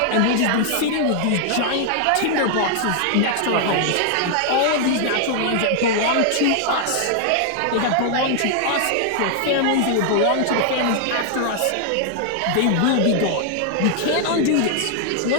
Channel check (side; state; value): both; different; correlation 0.00